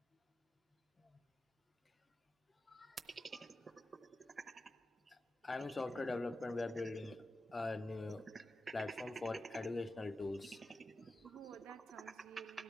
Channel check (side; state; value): both; normal; correlation 0.92